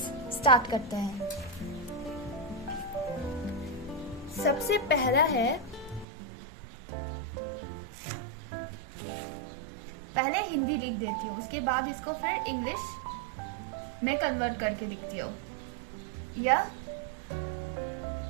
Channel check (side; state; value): left; drops out; at 6.1 s